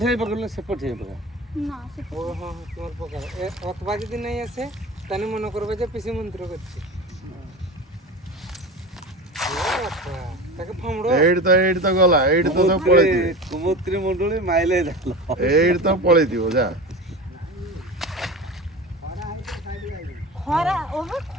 ହେଇ ପକେଇଲେ ସେପଟ ହେଇ ପକା না সে ও হ্যাঁ তোমার প্রকার অথবা যদি নাই আসে তাহলে মনে করবে যে পিসি মন্ত্র করছে ତାକୁ ଫମଡ ଏଇଠି ତ ଗଲା ଏଇଠି ତ ସବୁ ପଳେଇଥିବେ କୁମୁତ୍ରୀ ମୁଣ୍ଡୁଳି ମାଇଲେ ଜାଲ ଏଇଠି ତ ପଳେଇଥିବ ଯା ଖରା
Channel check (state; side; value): normal; both; correlation 0.31